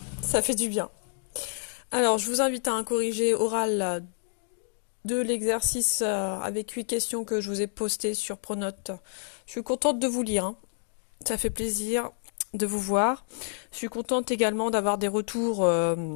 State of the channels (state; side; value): silent; right; digital silence